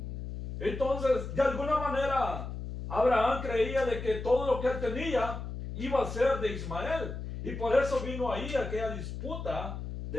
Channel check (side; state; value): left; noise; hum, 7 dB below the sound